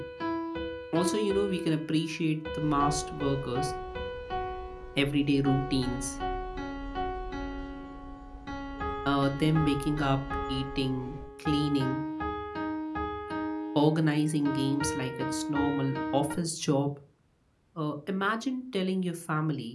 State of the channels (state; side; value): identical; both; correlation 1.00